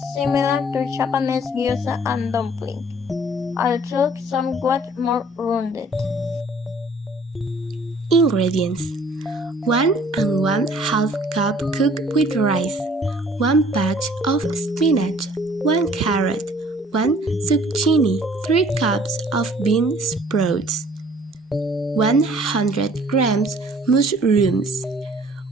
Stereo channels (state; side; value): normal; both; correlation 0.55